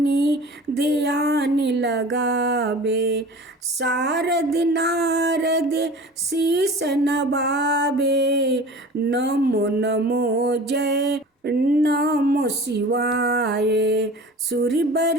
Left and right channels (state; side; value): normal; both; correlation 0.40